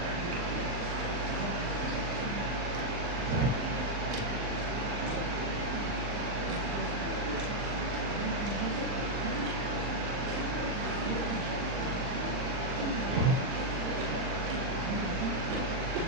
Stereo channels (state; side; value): late; left; 40 ms